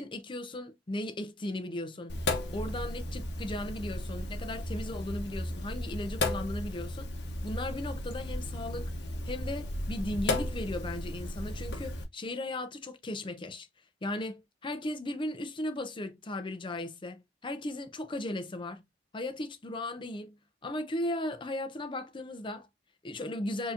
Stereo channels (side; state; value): both; normal; correlation 0.60